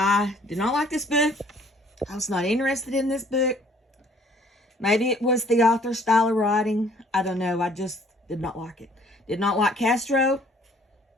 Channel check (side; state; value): both; normal; correlation 0.58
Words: did not like this book. I was not interested in this book. Maybe it was the author's style of writing. I don't know. I just did not like it. Did not like Castro.